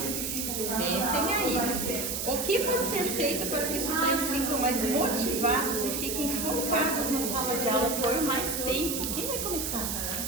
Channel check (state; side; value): noise; right; hiss, 2 dB below the sound